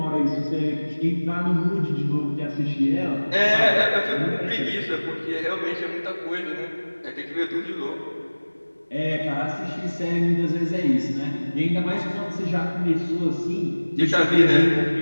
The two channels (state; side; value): inverted; both; correlation -1.00